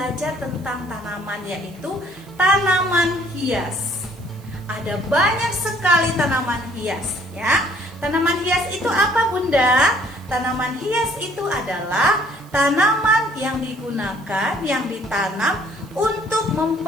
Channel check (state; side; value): noise; right; hiss, 27 dB below the sound